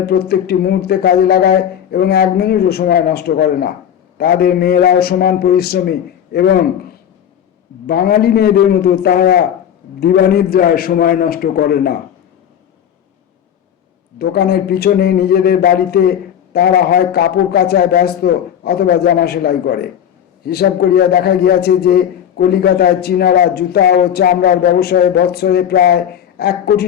প্রত্যেকটি মুহূর্তে কাজে লাগায় এবং 1 মিনিটও সময় নষ্ট করে না। তাদের মেয়েরাও সমান পরিশ্রমী এবং বাঙালি মেয়েদের মতো তাহারা দিবানিদ্রায় সময় নষ্ট করে না। দোকানের পিছনে নিজেদের বাড়িতে তারা হয় কাপড় কাচায় ব্যস্ত অথবা জামা সেলাই করে। হিসাব করিয়া দেখা গিয়াছে যে কলিকাতায় চীনারা জুতা ও চামড়ার ব্যবসায়ে বৎসরে প্রায় 1 কোটি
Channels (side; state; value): right; quieter; 9.5 dB